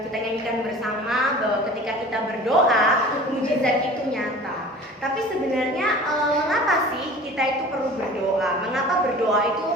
kita nyanyikan bersama bahwa ketika kita berdoa, mujizat itu nyata. Tapi sebenarnya mengapa sih kita itu perlu berdoa? Mengapa berdoa itu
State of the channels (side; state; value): both; normal; correlation 0.42